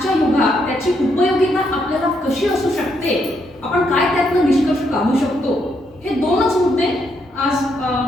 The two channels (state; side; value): normal; both; correlation 0.76